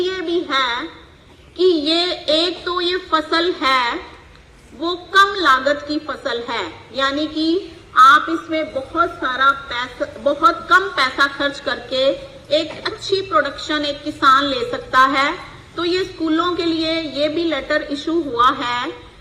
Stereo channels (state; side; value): identical; both; correlation 1.00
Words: भी है कि ये एक तो ये फसल है वो कम लागत की फसल है, यानी कि आप इसमें बहुत कम पैसा खर्च करके एक अच्छी प्रोडक्शन एक किसान ले सकता है। तो ये स्कूलों के लिए ये भी लेटर इशू हुआ है